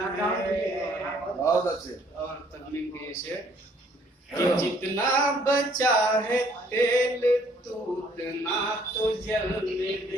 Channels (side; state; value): both; normal; correlation 0.62